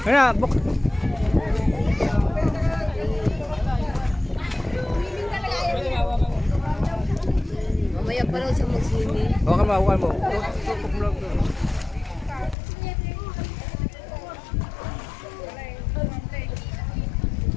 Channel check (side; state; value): right; drops out; at 12.6 s